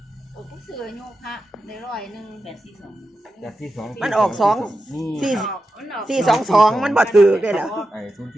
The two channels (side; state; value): both; normal; correlation 0.90